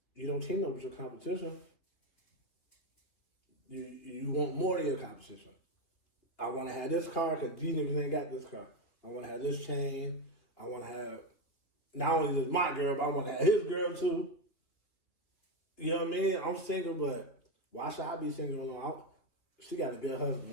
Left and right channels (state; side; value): late; right; 3.2 ms